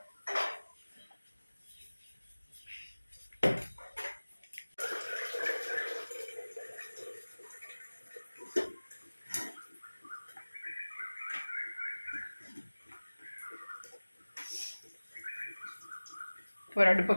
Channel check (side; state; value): both; inverted; correlation -1.00